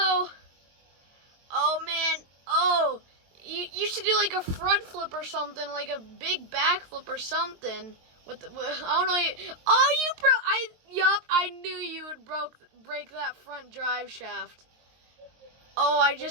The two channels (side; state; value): left; late; 23 ms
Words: Oh, man. Oh, you should do like a front flip or something, like a big back flip or something. I don't know. Oh, I knew you would break that front drive shaft. Oh, I